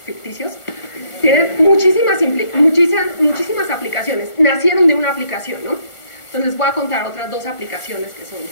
ficticios, tienen muchísimas aplicaciones. Nacieron de una aplicación, ¿no? Entonces, les voy a contar otras 2 aplicaciones que son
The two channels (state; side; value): late; right; 1.4 ms